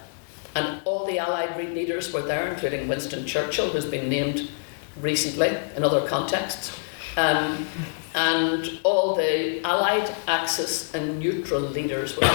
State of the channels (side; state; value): right; silent; 61 dB below the other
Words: And all the Allied leaders were there, including Winston Churchill, who's been named recently in other contexts. And all the Allied, Axis and neutral leaders were